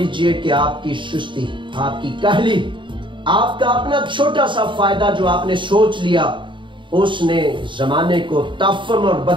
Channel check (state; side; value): late; left; 0.23 ms